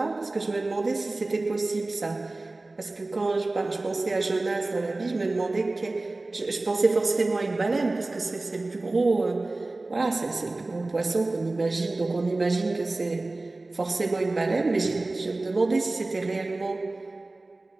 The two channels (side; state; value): left; quieter; 3.1 dB